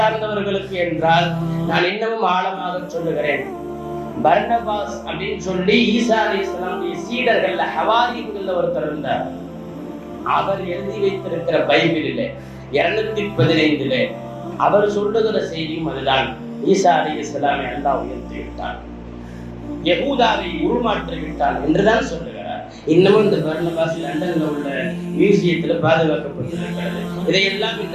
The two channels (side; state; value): both; identical; correlation 1.00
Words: என்றால் நான் இன்னமும் ஆழமாக சொல்லுகிறேன். பர்னபாஸ் அப்படின்னு சொல்லி ஈசா அலைஹிஸ்ஸலாமுடைய சீடர்கள்ல ஹவாரியன்கள்ல ஒருத்தர் இருந்தார். அவர் எழுதி வைத்திருக்கிற பைபிளிலே 215 அவர் சொல்லுகிற செய்தியும் அதுதான். ஈசா அலைஹிஸ்ஸலாமை அல்லாஹ் உயர்த்தி விட்டான், யஹூதாவை உருமாற்றி விட்டான் என்றுதான் சொல்லுகிறார். இன்னமும் இந்த பர்னபாஸ் லண்டன்ல உள்ள மியூசியத்துல பாதுகாக்கப்பட்டிருக்கிறது. இதையெல்லாம்